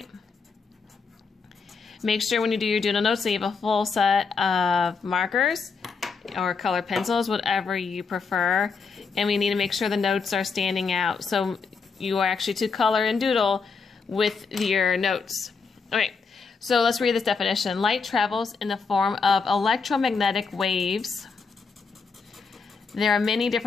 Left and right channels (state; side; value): quieter; right; 5.1 dB